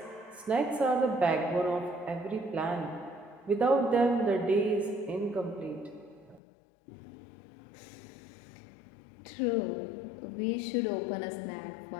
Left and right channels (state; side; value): drops out; right; at 6.4 s